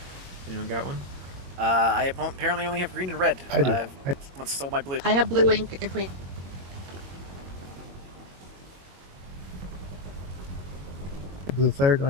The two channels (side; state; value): left; late; 22 ms